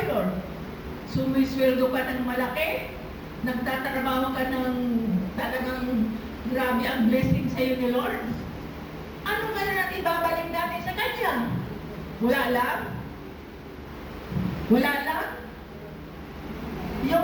Lord? Sumisweldo ka ng malaki? Nagtatrabaho ka ng talagang grabe ang blessing sa iyo ni Lord? Ano nga na ibabalik natin sa Kanya? Wala lang? Wala lang? Yung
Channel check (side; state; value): both; identical; correlation 1.00